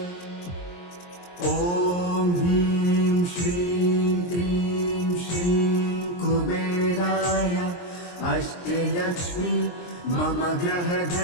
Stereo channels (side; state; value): right; late; 23 ms